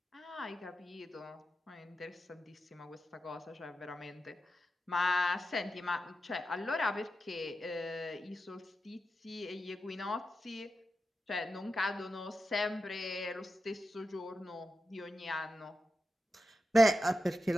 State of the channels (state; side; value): normal; both; correlation 0.90